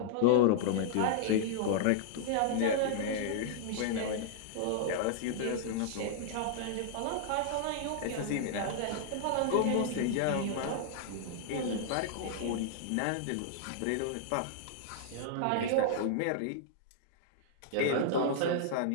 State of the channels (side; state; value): both; different; correlation -0.01